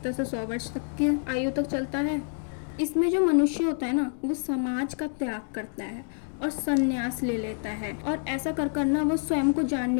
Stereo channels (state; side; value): silent; right; 58 dB below the other